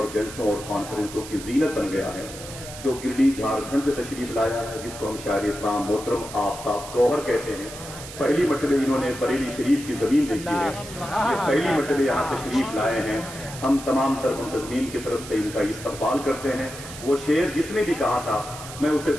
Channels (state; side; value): noise; right; hiss, 13 dB below the sound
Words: جلسوں اور کانفرنسوں کی زینت بن گیا ہے۔ جو گرڈی جھارکھنڈ سے تشریف لایا ہے، جس کو ہم شاعر اسلام محترم آفتاب گوہر کہتے ہیں، پہلی مرتبہ انہوں نے بریلی شریف کی زمین دیکھی ہے، یہ پہلی مرتبہ یہاں تشریف لائے ہیں۔ ہم تمام تر منتظمین کی طرف سے ان کا استقبال کرتے ہیں۔ وہ شعر جس نے بھی کہا تھا میں اسے